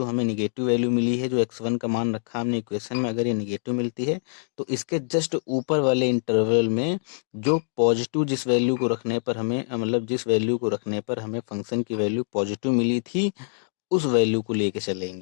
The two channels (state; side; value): silent; right; digital silence